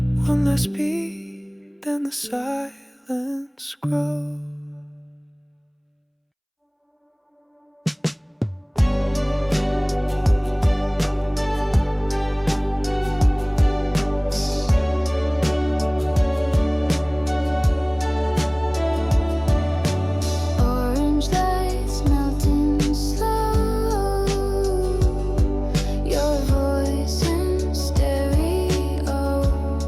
One last beat, then the silence grows. Orange lights melting slow, your voice in stereo.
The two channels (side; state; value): both; identical; correlation 1.00